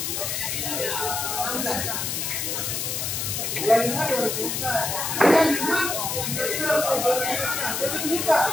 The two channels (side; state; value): left; noise; hiss, 2 dB below the sound